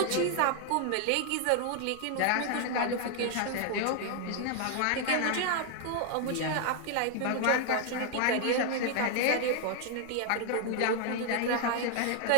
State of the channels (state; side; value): different; both; correlation 0.00